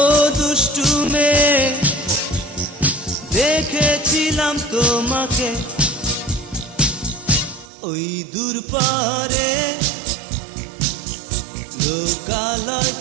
দুষ্টু মেয়ে দেখেছিলাম তোমাকে ওই দূর পারে লোকালয়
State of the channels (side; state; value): left; drops out; at 7.7 s